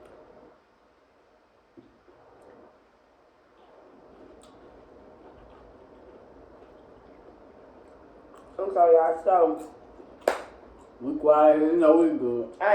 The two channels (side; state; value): both; identical; correlation 1.00